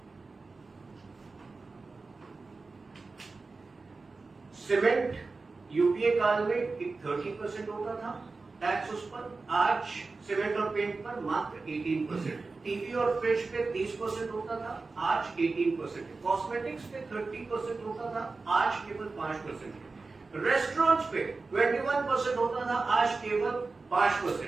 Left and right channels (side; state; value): left; quieter; 3.9 dB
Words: सीमेंट यूपीए काल में 30% होता था टैक्स उस पर. आज सीमेंट और पेंट पर मात्र 18%. टीवी और फ्रिज पे 30% होता था, आज 18%. कॉस्मेटिक्स पे 30% होता था, आज केवल 5%. रेस्टोरेंट्स पे 21% होता था, आज केवल